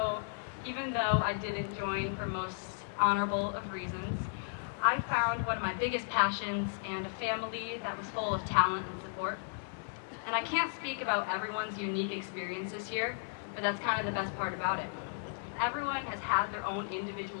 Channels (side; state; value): right; silent; digital silence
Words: even though I didn't join for most honorable of reasons, I found one of my biggest passions and a family that was full of talent and support. And I can't speak about everyone's unique experiences here, but that's kind of the best part about it. Everyone has had their own